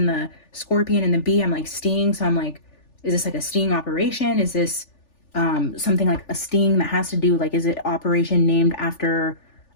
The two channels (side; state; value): right; late; 3.4 ms